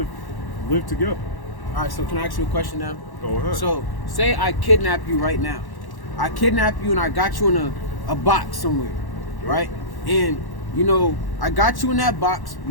live together. All right, so can I ask you a question now? Go ahead. So, say I kidnap you right now. I kidnap you and I got you in a box somewhere, right? And, you know, I got you in that box.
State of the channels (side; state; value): right; late; 1.1 ms